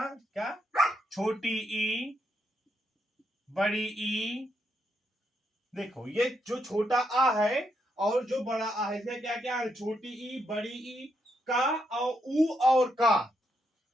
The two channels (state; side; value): normal; both; correlation 0.79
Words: क्या? छोटी ई, बड़ी ई। देखो, ये जो छोटा आ है और जो बड़ा आ है, इसमें क्या क्या है? छोटी ई, बड़ी ई, का और ऊ और का।